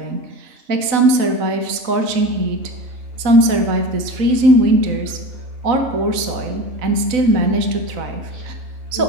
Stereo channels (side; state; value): left; late; 3.9 ms